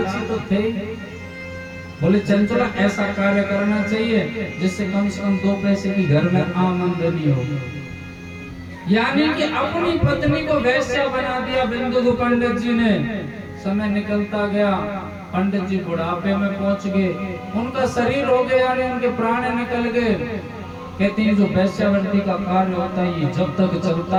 तो थे। बोले चंचला ऐसा कार्य करना चाहिए जिससे कम से कम 2 पैसे की घर में आमदनी हो। यानी कि अपनी पत्नी को वैश्या बना दिया बिंदु पंडित जी ने। समय निकलता गया, पंडित जी बुढ़ापे में पहुंच गए, उनका शरीर हो गया यानी उनके प्राण निकल गए। कहते हैं जो वैश्यावृत्ति का कार्य होता है ये जब तक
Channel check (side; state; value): both; identical; correlation 1.00